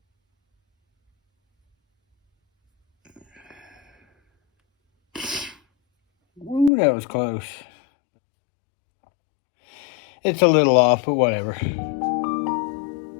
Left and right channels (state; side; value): drops out; right; at 6.7 s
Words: Ooh, that was close. It's a little off, but whatever.